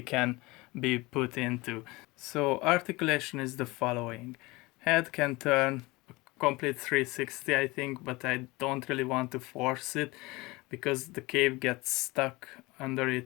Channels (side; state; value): right; quieter; 22.6 dB